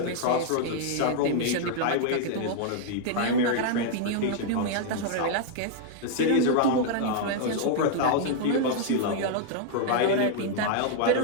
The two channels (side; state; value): both; different; correlation 0.00